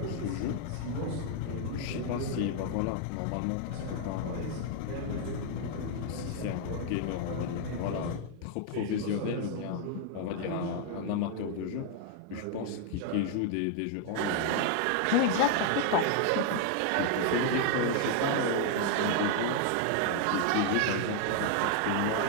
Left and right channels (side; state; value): both; different; correlation 0.00